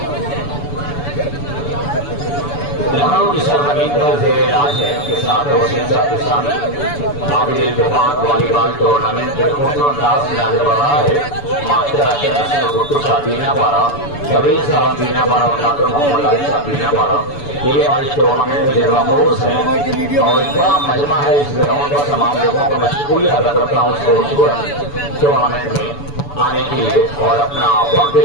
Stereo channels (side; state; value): right; late; 7.0 ms